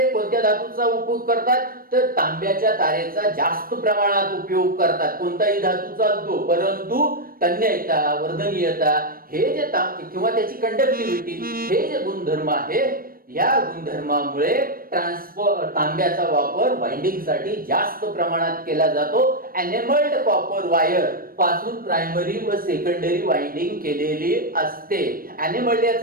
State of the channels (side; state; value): left; late; 0.42 ms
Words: कोणत्या धातूचा उपयोग करतात, तर तांब्याच्या तारेचा जास्त प्रमाणात उपयोग करतात. कोणताही धातू चालतो, परंतु तन्यता, वर्धनीयता हे जे किंवा त्याची कंडक्टिव्हिटी हे जे गुणधर्म आहे, या गुणधर्मामुळे तांब्याचा वापर वाइंडिंग साठी जास्त प्रमाणात केला जातो. एनेमल्ड कॉपर वायर पासून प्रायमरी व सेकंडरी वाइंडिंग केलेली असते. एनेमल्ड